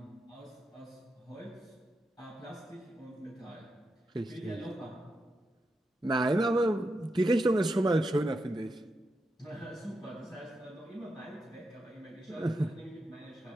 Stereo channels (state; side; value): normal; both; correlation 0.86